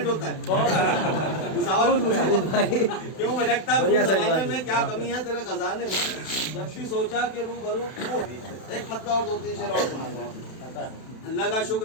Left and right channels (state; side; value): late; right; 32 ms